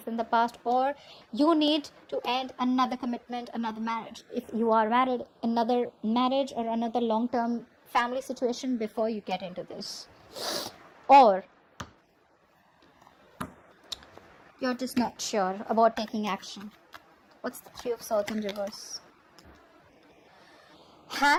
in the past, or you need to end another commitment, another marriage. If you are married, another marriage or another long-term family situation before you get into this. Or you're just not sure about taking action. What's the Three of Swords in reverse?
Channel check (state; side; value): identical; both; correlation 1.00